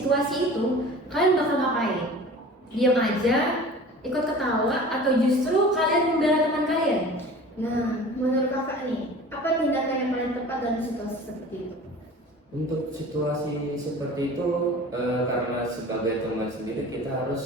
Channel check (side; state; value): both; normal; correlation 0.41